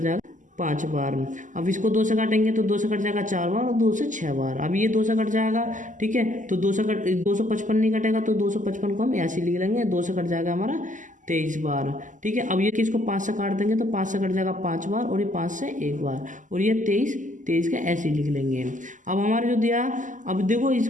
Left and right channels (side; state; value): left; late; 0.37 ms